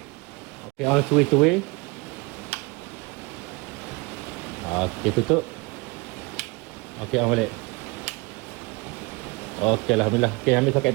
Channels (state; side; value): quieter; left; 26.7 dB